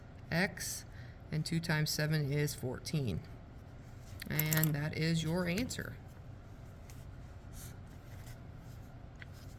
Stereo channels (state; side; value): identical; both; correlation 1.00